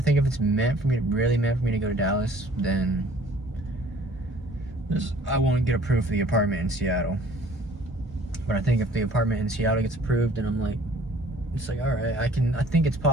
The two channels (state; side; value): normal; both; correlation 0.54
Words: think if it's really meant for me to go to Dallas, then I won't get approved for the apartment in Seattle. But I think if the apartment in Seattle gets approved, then I'm like, it's like, all right, I think it's